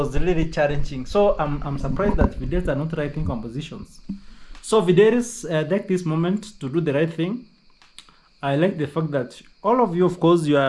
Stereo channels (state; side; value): identical; both; correlation 1.00